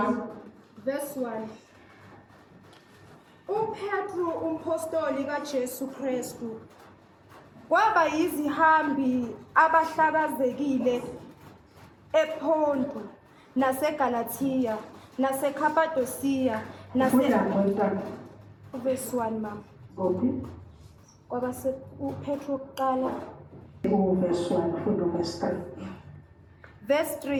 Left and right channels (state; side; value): identical; both; correlation 1.00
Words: Verse 1. UPetru umpostoli kaJesu Kristu kwaba yizihambi abahlakazekile ePonto naseGalatia naseKhapadosiya Verse 1 mama. Kwaba uPetru kuqala Verse 1 funda verse 3. Verse